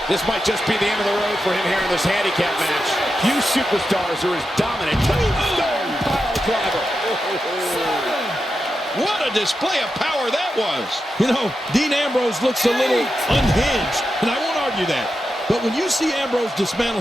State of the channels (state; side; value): normal; both; correlation 0.89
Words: This might just be the end of the road for him here in this handicap match. Few superstars are as dominant. Tombstone pile driver. What a display of power that was. You know, Dean Ambrose looks a little unhinged, and I won't argue that. But when you see Ambrose dismantle